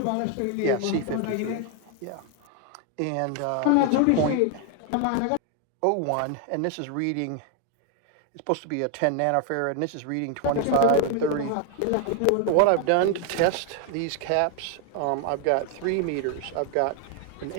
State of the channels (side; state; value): both; different; correlation 0.00